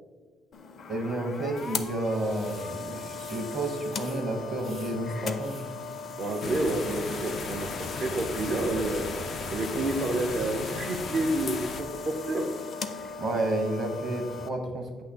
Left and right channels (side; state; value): both; normal; correlation 0.71